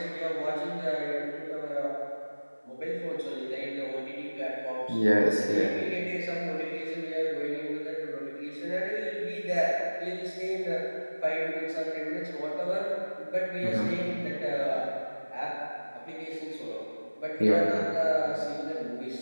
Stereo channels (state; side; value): inverted; both; correlation -1.00